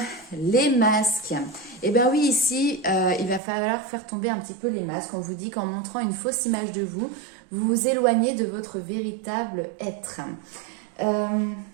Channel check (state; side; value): drops out; left; at 3.4 s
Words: les masques. Eh bien oui, ici, il va falloir faire tomber un petit peu les masques. On vous dit qu'en montrant une fausse image de vous, vous vous éloignez de votre véritable être.